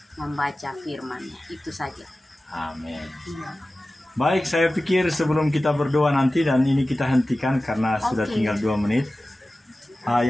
membaca firman-Nya, itu saja. Amin. Baik, saya pikir sebelum kita berdoa nanti, dan ini kita hentikan karena sudah tinggal 2 menit.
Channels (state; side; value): normal; both; correlation 0.96